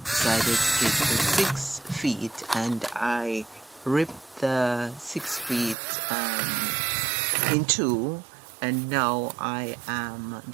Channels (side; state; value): left; drops out; at 5.8 s